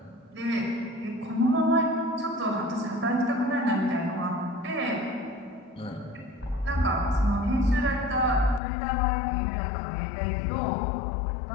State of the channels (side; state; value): right; drops out; at 8.6 s